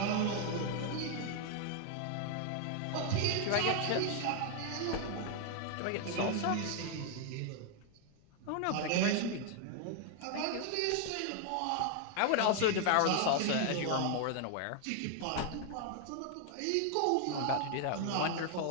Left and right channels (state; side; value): different; both; correlation 0.00